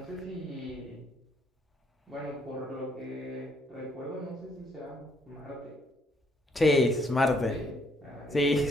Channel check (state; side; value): normal; both; correlation 0.69